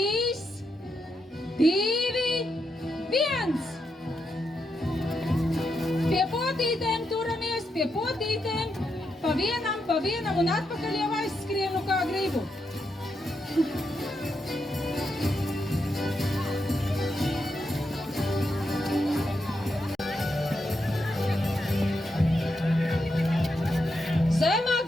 2, 1! Pie potītēm turamies, pie potītēm, pa vienam un atpakaļ jau aizskrienu kā gribu. Zemāk,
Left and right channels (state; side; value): normal; both; correlation 0.83